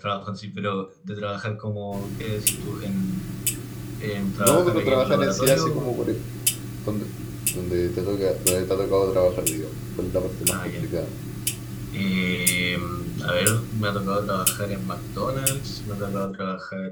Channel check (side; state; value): both; identical; correlation 1.00